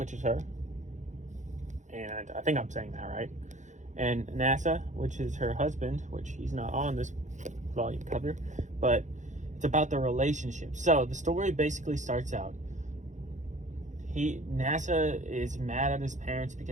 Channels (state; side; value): late; left; 0.35 ms